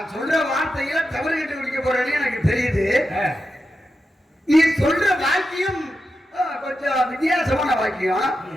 சொல்ற வார்த்தையில தவறு கட்டு குடிக்க போறேன்னு எனக்கு தெரியுது. நீ சொல்ற வாக்கியம் கொஞ்சம் வித்தியாசமான வாக்கியம்.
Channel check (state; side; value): normal; both; correlation 0.89